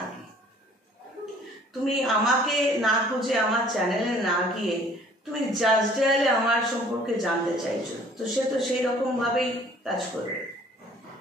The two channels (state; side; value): normal; both; correlation 0.54